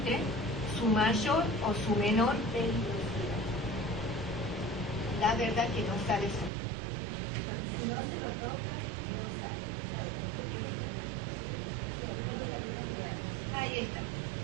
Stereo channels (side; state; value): left; drops out; at 6.5 s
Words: su mayor o su menor peligrosidad. La verdad que no sale solo. Si no se lo toca, no sale. Ahí está.